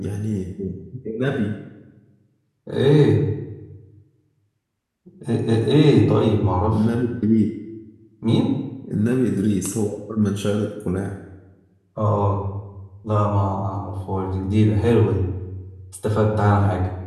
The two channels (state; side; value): identical; both; correlation 1.00